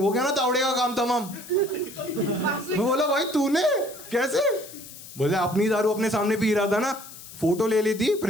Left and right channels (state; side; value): noise; left; hiss, 16 dB below the sound